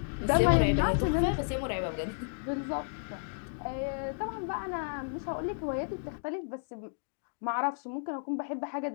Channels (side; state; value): right; silent; digital silence